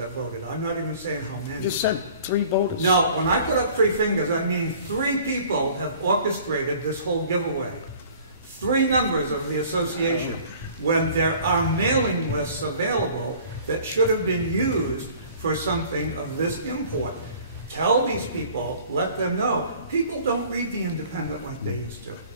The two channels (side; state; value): both; inverted; correlation -0.50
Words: voted. I'm not even saying how many. You just said 3 voters. No, when I put up 3 fingers, I mean 3 people have orchestrated this whole giveaway. 3 members of the association. When there are mailing lists available that should have been used for something of this import. Tell these people, let them know. People don't read the Independent like they used to.